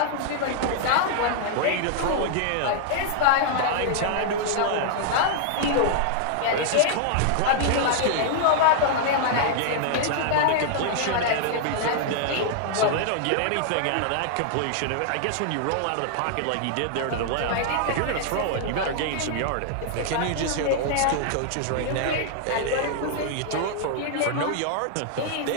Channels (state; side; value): different; both; correlation -0.01